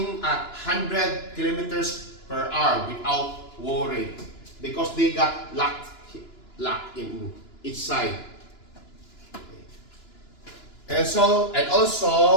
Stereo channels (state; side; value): late; right; 2.9 ms